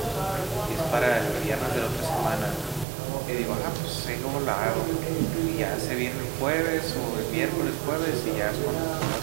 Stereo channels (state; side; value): drops out; left; at 2.9 s